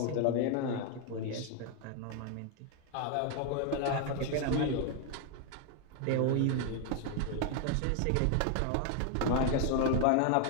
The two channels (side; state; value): both; different; correlation 0.01